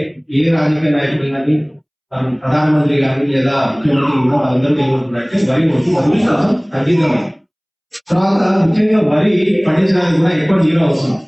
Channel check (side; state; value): both; identical; correlation 1.00